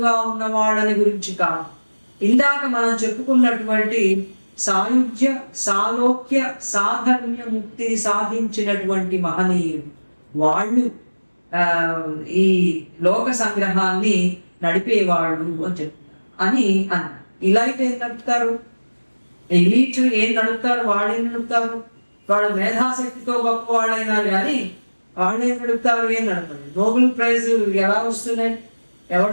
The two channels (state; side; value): inverted; both; correlation -1.00